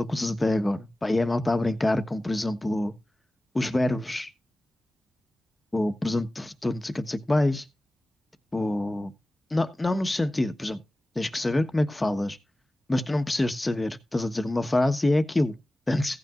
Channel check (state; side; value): normal; both; correlation 0.96